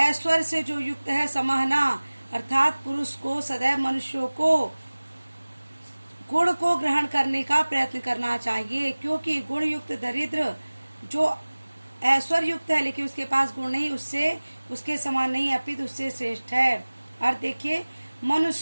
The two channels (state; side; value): inverted; both; correlation -1.00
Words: से जो युक्त है, समहना अर्थात पुरुष को सदैव मनुष्यों को गुण को ग्रहण करने का प्रयत्न करना चाहिए, क्योंकि गुण युक्त दरिद्र जो ऐश्वर्य युक्त है लेकिन उसके पास गुण नहीं, उससे उसके समान नहीं अपितु उससे श्रेष्ठ है। और देखिए,